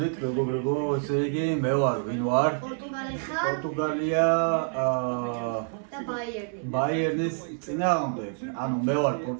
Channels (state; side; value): silent; left; 60 dB below the other